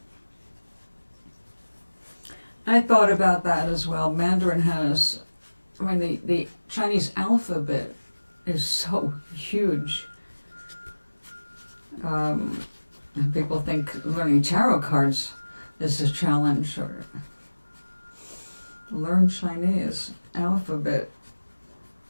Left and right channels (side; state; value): both; inverted; correlation -1.00